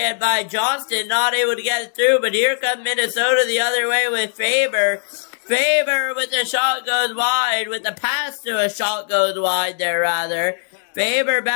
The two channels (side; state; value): right; silent; digital silence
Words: by Johnston, not able to get it through. But here comes Minnesota the other way with Faber. Faber with the shot goes wide, with the pass to a shot goes wide there, rather. Faber